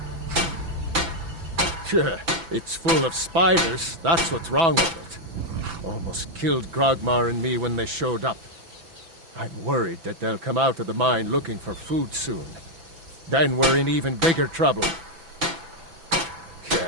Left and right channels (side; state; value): left; late; 6.0 ms